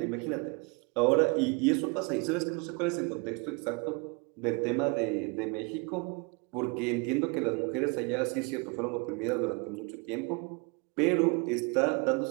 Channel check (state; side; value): quieter; left; 30.9 dB